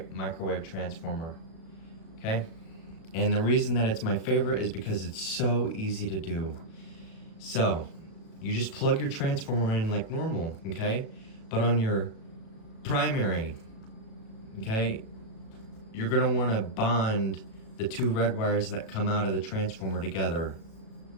transformer, okay? And the reason that it's my favorite is because it's so easy to do. So you just plug your transformer in like normal, okay? But on your primary, okay, you're gonna wanna bond the two red wires that come out of the transformer together,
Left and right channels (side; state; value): right; late; 36 ms